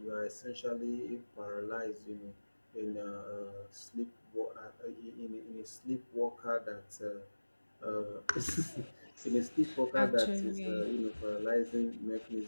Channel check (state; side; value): inverted; both; correlation -1.00